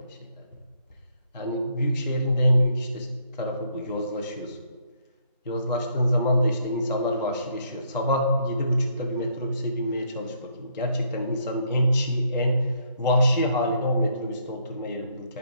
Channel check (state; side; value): inverted; both; correlation -0.70